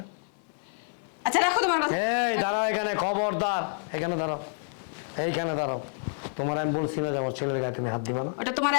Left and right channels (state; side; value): silent; right; 57 dB below the other